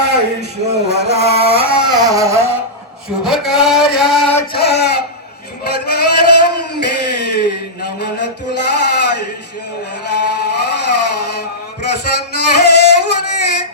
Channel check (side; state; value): both; normal; correlation -0.12